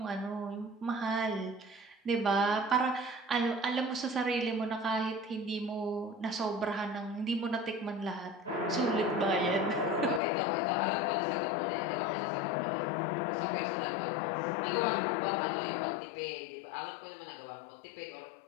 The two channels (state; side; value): drops out; right; at 10.2 s